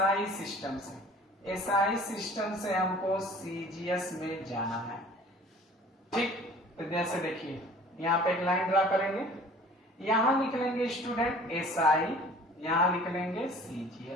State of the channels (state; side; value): normal; both; correlation 0.48